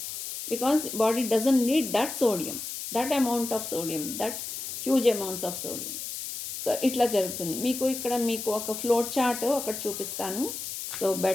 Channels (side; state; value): left; noise; hiss, 7 dB below the sound